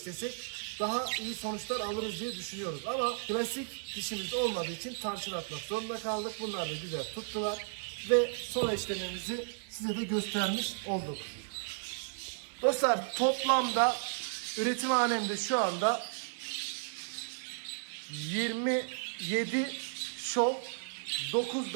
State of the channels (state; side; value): silent; left; 55 dB below the other